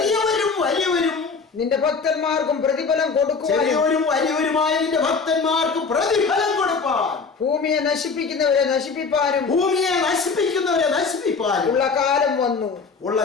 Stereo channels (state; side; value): quieter; right; 4.9 dB